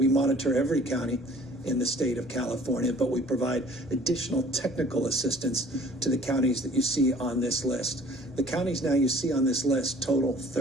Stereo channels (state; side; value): normal; both; correlation 0.52